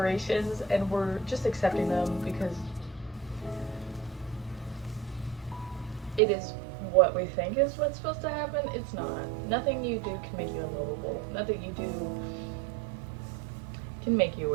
and we're just accepting them because it is what we think is what's supposed to happen. It's not. Nothing you do can make you unlovable. Nothing you do can make you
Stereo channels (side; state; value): left; drops out; at 6.2 s